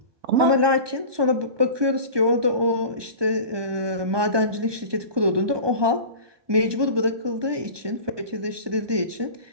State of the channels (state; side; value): late; left; 1.2 ms